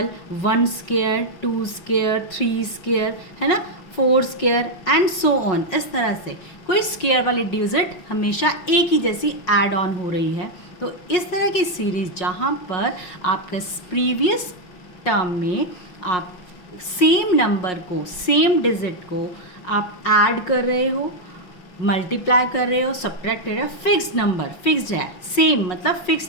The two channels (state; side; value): late; right; 5.5 ms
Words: 1 square, 2 square, 3 square, है ना, 4 स्क्वायर एंड सो ऑन। इस तरह से कोई स्क्वायर वाली डिजिट हमेशा एक ही जैसी ऐड ऑन हो रही है। तो इस तरह की सीरीज़ जहाँ पर आपका प्रीवियस टर्म में आप सेम नंबर को, सेम डिजिट को आप ऐड कर रहे हो, मल्टीप्लाई कर रहे हो, सब्ट्रैक्ट कर रहे हो, फिक्स नंबर, फिक्स्ड है, सेम मतलब